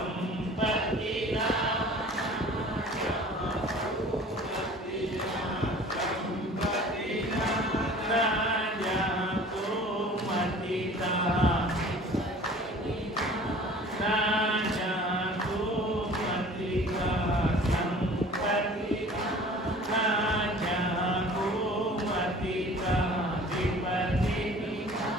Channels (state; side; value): normal; both; correlation 0.46